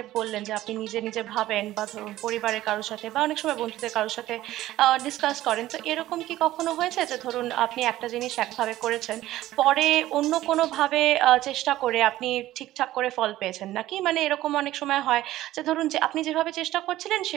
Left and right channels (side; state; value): left; quieter; 15.1 dB